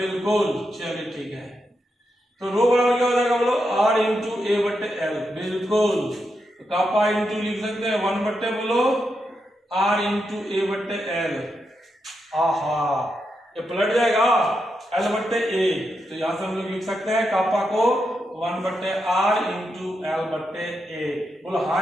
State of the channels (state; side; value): normal; both; correlation 0.85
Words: चलिए ठीक है, तो रो बराबर क्या हो जाएगा, बोलो आर इंटू ए बटे एल, बिल्कुल। तो कापा इंटू लिख सकते हैं 1 बटे, बोलो आर इंटू ए बटे एल। आहा, ये पलट जाएगा एल बटे ए, तो यहां से हम लोग लिख सकते हैं कापा को 1 बटे आर इंटू एल बटे ए। बोलो